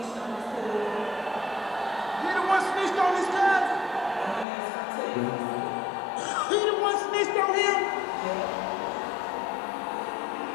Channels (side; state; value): right; drops out; at 4.5 s